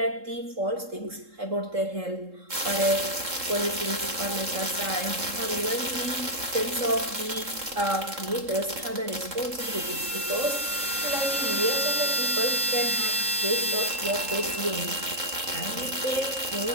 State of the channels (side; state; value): left; late; 3.7 ms